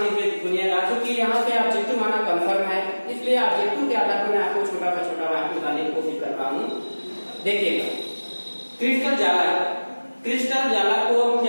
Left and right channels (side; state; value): both; inverted; correlation -1.00